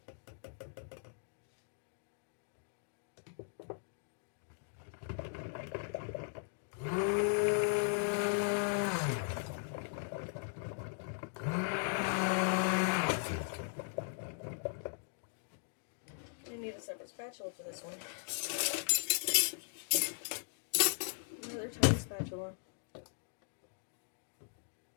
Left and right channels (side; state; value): right; silent; digital silence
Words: I need a separate spatula for this one. Another tiny spatula.